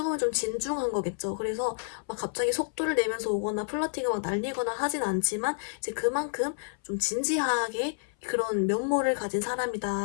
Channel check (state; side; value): silent; right; 58 dB below the other